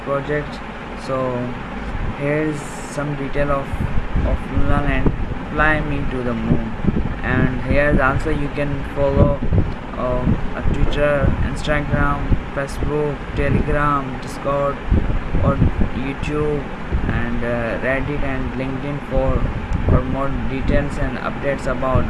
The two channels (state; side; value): identical; both; correlation 1.00